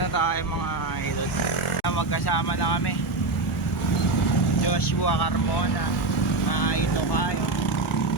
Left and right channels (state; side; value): quieter; left; 3.3 dB